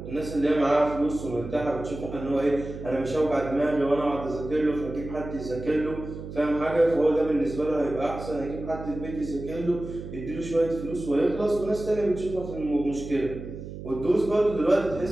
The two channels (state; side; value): noise; right; hum, 10 dB below the sound